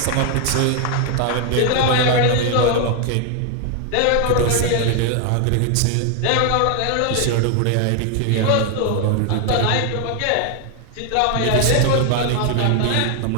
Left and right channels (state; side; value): different; both; correlation 0.00